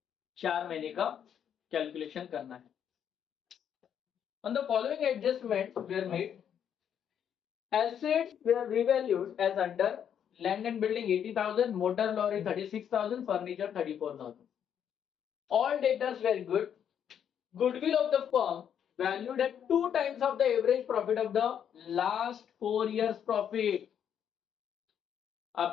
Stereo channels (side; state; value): right; quieter; 8.7 dB